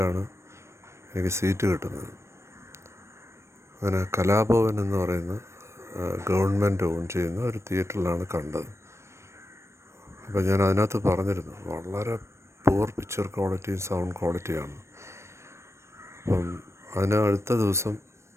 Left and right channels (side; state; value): left; late; 0.13 ms